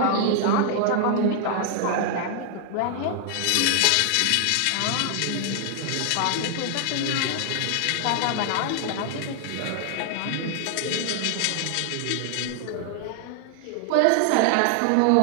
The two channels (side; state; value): both; different; correlation 0.00